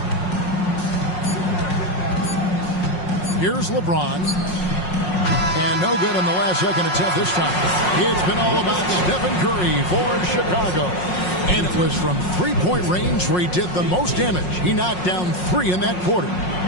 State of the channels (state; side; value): late; right; 5.5 ms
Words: Here's LeBron. And no good in the last second attempt this time. It's been all about Stephen Curry for Chicago. And it was from three-point range where he did the most damage. He knocked down 3 in that quarter.